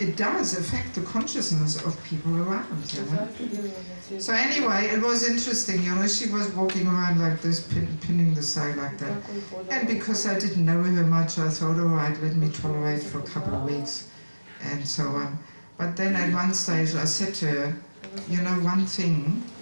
does affect the consciousness of people around, you know. So anyway, it was interesting, you know, she was walking around like this, pinning the sari like that. And because I didn't know her much, I thought, all right, let me tolerate for a couple of weeks, and so on. But then at one stage I said to her, you know, one thing,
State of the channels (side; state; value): both; inverted; correlation -1.00